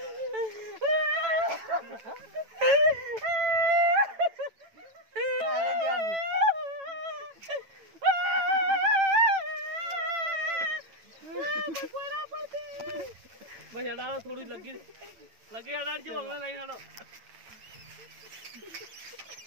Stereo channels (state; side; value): late; left; 9.0 ms